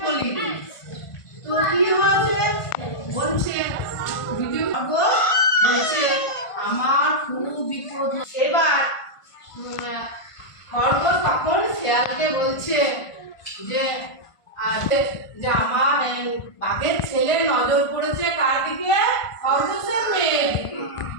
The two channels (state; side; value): late; right; 1.5 ms